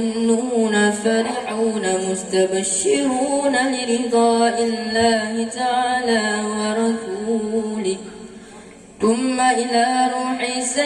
فرحون مستبشرون لرضاء الله تعالى ورسوله ثم إلى روح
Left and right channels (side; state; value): both; identical; correlation 1.00